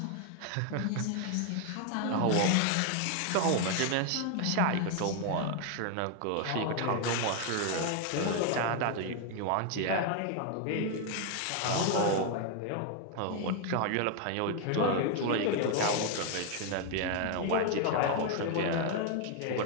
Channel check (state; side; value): different; both; correlation 0.01